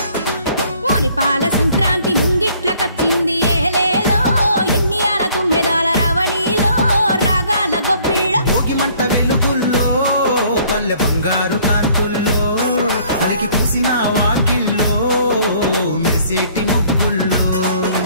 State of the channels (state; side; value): inverted; both; correlation -0.59